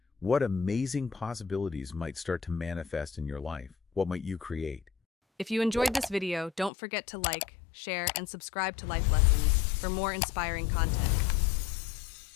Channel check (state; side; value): drops out; right; at 6.7 s